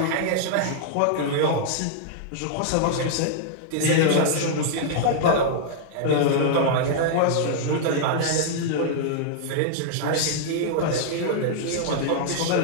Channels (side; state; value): both; different; correlation -0.01